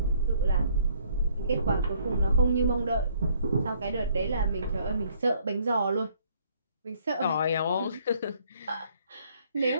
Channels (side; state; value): both; inverted; correlation -0.63